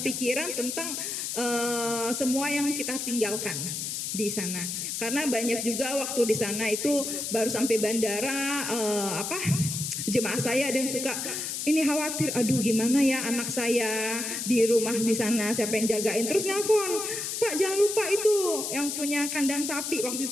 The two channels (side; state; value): left; noise; hiss, 3 dB below the sound